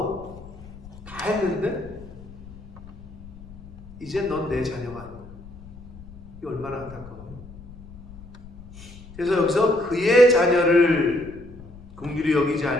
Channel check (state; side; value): noise; left; rumble, 17 dB below the sound